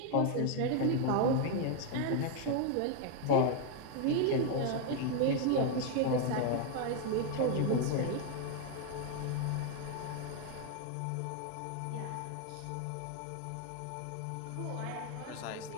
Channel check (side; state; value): both; different; correlation 0.01